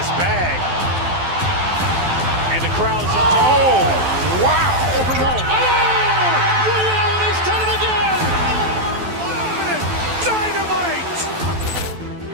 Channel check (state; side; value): late; left; 12 ms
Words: bag. And the crowd's, oh, wow. Ray Allen has done it again. Dynamite.